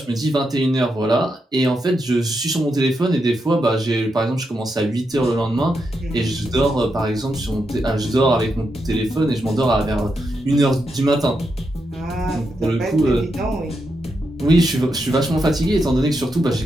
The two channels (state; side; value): normal; both; correlation 0.84